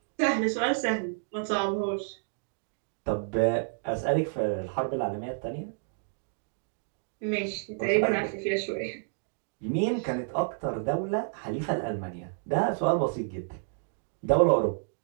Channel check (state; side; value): silent; left; digital silence